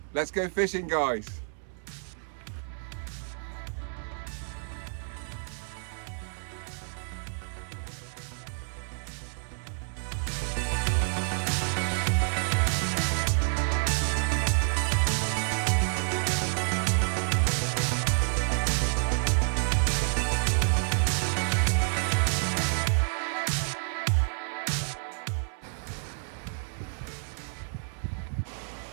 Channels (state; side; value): silent; left; 57 dB below the other